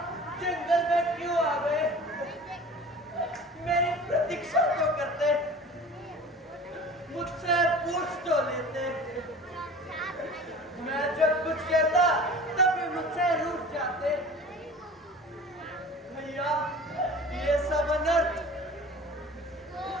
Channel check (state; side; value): normal; both; correlation 0.41